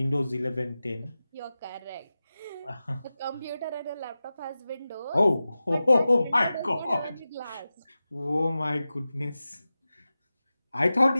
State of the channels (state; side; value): inverted; both; correlation -0.94